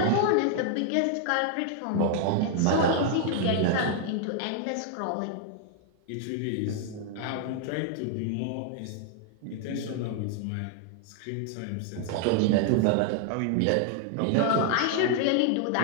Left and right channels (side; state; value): both; different; correlation 0.00